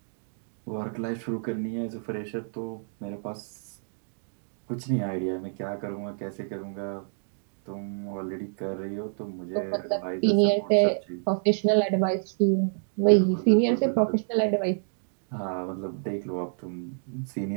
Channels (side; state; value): left; silent; digital silence